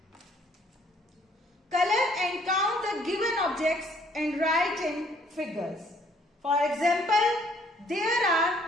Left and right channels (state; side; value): normal; both; correlation 0.63